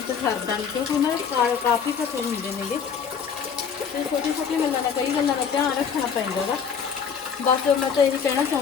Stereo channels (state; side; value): quieter; right; 6.9 dB